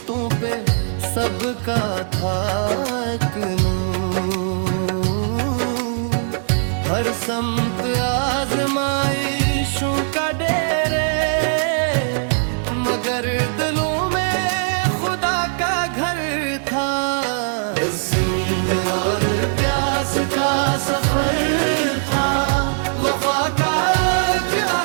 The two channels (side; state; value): left; silent; digital silence